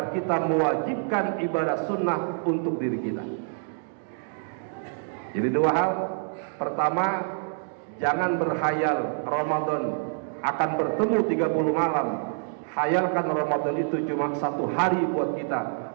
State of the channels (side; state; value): left; silent; 60 dB below the other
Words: kita mewajibkan ibadah sunnah untuk diri kita. Jadi dua hal. Pertama, jangan berhayal Ramadan akan bertemu 30 malam. Hayalkan Ramadan itu cuma 1 hari buat kita,